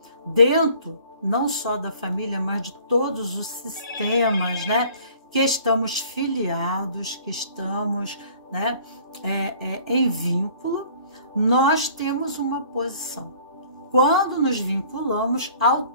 dentro não só da família, mas de todos os sistemas, né, que estamos filiados, que estamos, né, em vínculo, nós temos uma posição. Quando nos vinculamos,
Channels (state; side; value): inverted; both; correlation -0.53